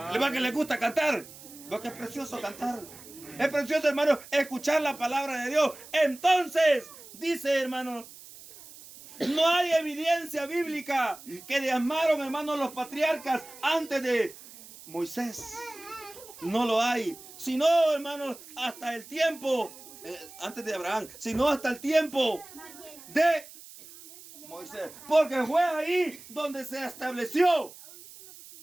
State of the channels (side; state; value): right; noise; hiss, 18 dB below the sound